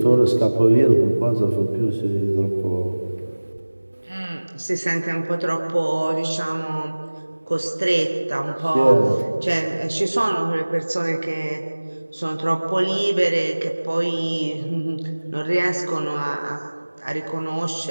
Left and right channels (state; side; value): inverted; both; correlation -1.00